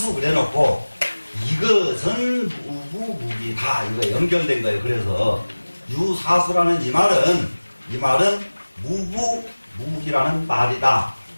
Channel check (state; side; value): inverted; both; correlation -1.00